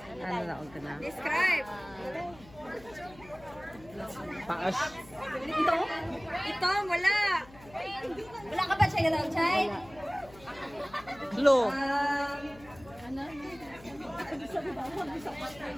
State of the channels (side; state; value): left; noise; hum, 21 dB below the sound